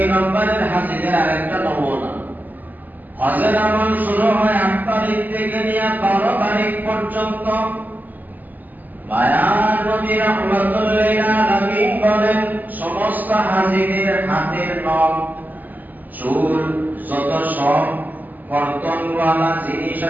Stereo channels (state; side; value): late; left; 0.084 ms